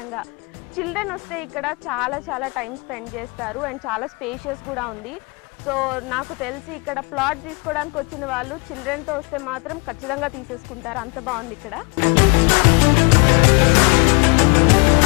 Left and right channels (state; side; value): quieter; right; 32.6 dB